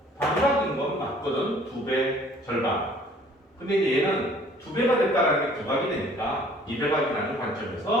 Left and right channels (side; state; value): both; normal; correlation 0.55